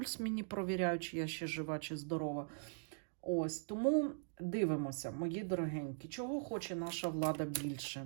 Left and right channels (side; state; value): left; silent; digital silence